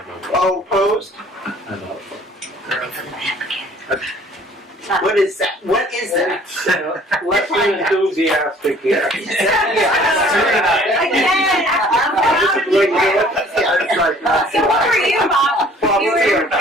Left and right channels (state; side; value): normal; both; correlation 0.54